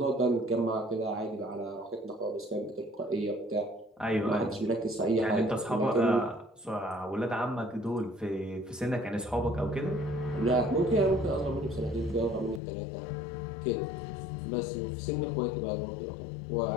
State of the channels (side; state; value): right; drops out; at 12.6 s